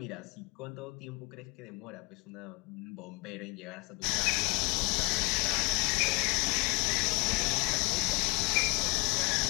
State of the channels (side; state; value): right; quieter; 27.7 dB